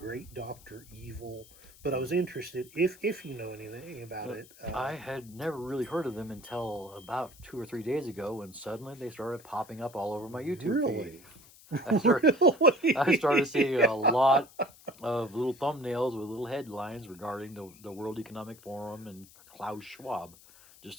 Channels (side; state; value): left; noise; hiss, 23 dB below the sound